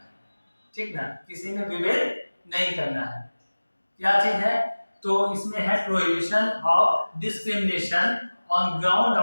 है, ठीक ना, किसी में विभेद नहीं करना है। क्या चीज है? तो इसमें है prohibition of discrimination on ground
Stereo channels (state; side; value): inverted; both; correlation -1.00